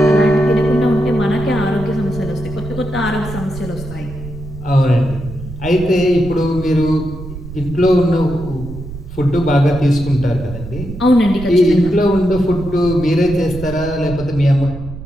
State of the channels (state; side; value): noise; right; rumble, 11 dB below the sound